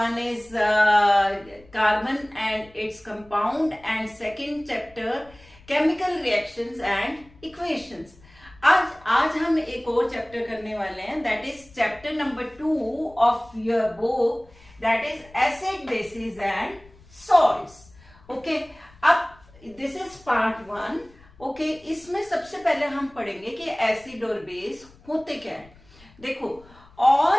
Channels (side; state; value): left; noise; rumble, 25 dB below the sound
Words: is carbon and its compound and second chapter chemical reactions and equations. आज हम एक और चैप्टर करने वाले हैं, that is chapter number 2 of your book, that is acid basis and salts. Okay, अब दिस इज पार्ट 1। ओके, इसमें सबसे पहले हम पढ़ेंगे कि एसिड और बेस होते क्या है। देखो,